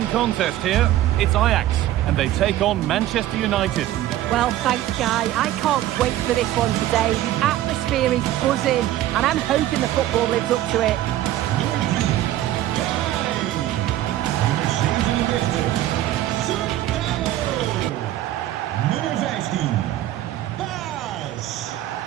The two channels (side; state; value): left; quieter; 13.7 dB